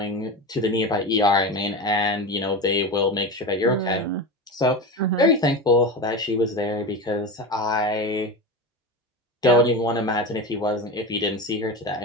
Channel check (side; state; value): both; normal; correlation 0.24